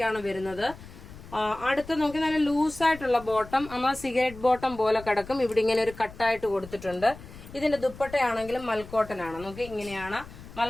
ആണ് വരുന്നത്. അടുത്ത് നോക്കി നല്ല ലൂസായിട്ടുള്ള ബോട്ടം, നമ്മൾ സിഗരറ്റ് ബോട്ടം പോലെ കിടക്കും. ഇവിടെ ഇങ്ങനെ ഒരു കട്ടായിട്ട് കൊടുത്തിട്ടുണ്ട്. ഇതിന്റെ ദുപ്പട്ടയാണെങ്കിലും മൽക്കോട്ടൻ ആണ്. നോക്കി ഇങ്ങനെയാണ്,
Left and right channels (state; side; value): noise; left; rumble, 17 dB below the sound